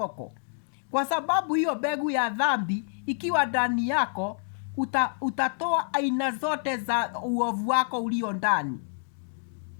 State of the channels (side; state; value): right; silent; digital silence